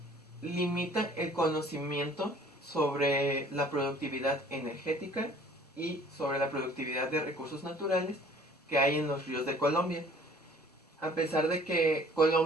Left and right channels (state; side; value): normal; both; correlation 0.53